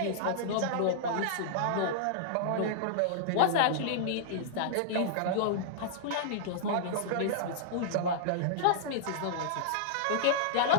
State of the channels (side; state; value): both; different; correlation -0.02